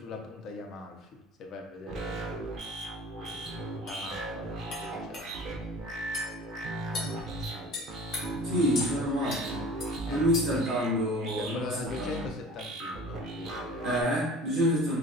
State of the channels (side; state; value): both; normal; correlation 0.43